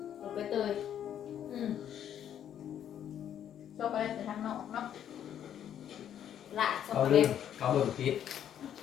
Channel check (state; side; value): quieter; right; 9.9 dB